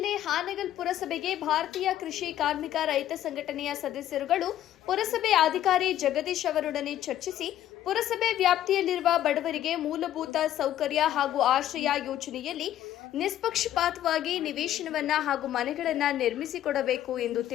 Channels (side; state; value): right; quieter; 12.2 dB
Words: ಹಾನಗಲ್ ಪುರಸಭೆಗೆ ಭಾರತೀಯ ಕೃಷಿ ಕಾರ್ಮಿಕ ರೈತ ಸಂಘಟನೆಯ ಸದಸ್ಯರುಗಳು ಪುರಸಭೆ ಅಧಿಕಾರಿ ಜಗದೀಶ್ ಅವರೊಡನೆ ಚರ್ಚಿಸಿ ಪುರಸಭೆ ವ್ಯಾಪ್ತಿಯಲ್ಲಿರುವ ಬಡವರಿಗೆ ಮೂಲಭೂತ ಸೌಕರ್ಯ ಹಾಗೂ ಆಶ್ರಯ ಯೋಜನೆಯಲ್ಲಿ ನಿಷ್ಪಕ್ಷಪಾತವಾಗಿ ನಿವೇಶನವನ್ನ ಹಾಗೂ ಮನೆಗಳನ್ನು ನಿರ್ಮಿಸಿಕೊಡಬೇಕು ಎಂದು